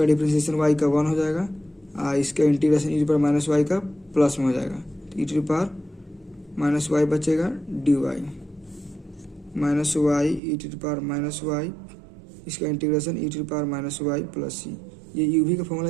डिफ्रेंशिएशन y का 1 हो जाएगा, इसका integration E to the power minus y का प्लस में हो जाएगा, तो e to the power minus y बचेगा d y minus y E to the power minus y, इसका integration E to the power minus y plus सी। ये u भी का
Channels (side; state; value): left; drops out; at 10.4 s